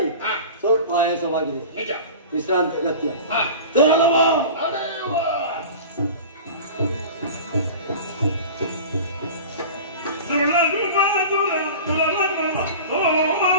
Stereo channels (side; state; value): both; inverted; correlation -0.36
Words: ಸ್ವಲ್ಪ ಆಯಾಸವಾಗಿದೆ. ವಿಶ್ರಾಂತಿ ಅಗತ್ಯ. ತೆರಳುವ